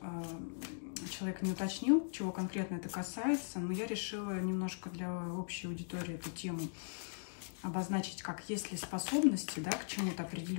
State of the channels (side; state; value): right; silent; digital silence